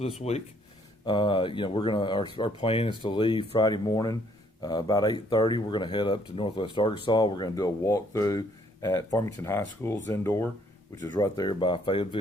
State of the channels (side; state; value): both; normal; correlation 0.65